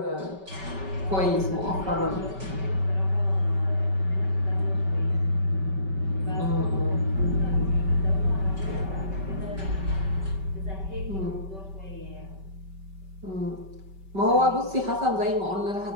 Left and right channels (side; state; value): left; late; 5.2 ms